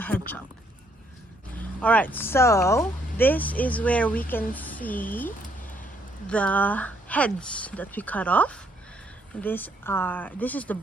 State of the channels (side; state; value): both; normal; correlation 0.70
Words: chop. All right, so this is where we can see the heads that we cut off. This is the